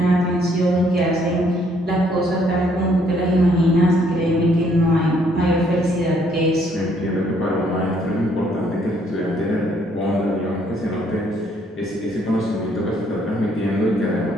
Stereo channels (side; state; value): both; normal; correlation 0.67